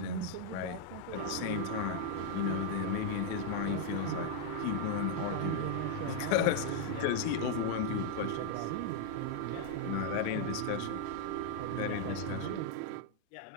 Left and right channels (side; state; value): both; different; correlation 0.00